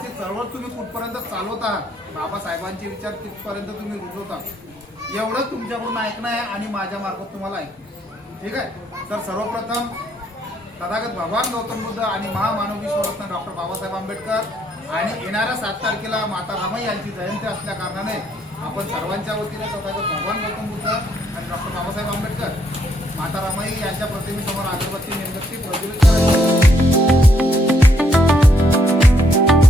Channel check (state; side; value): normal; both; correlation 0.72